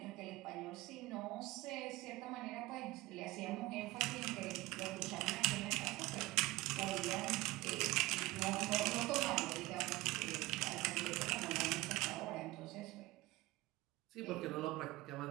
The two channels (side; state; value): left; quieter; 19.7 dB